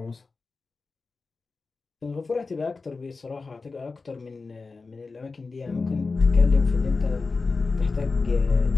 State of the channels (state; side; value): quieter; right; 4.1 dB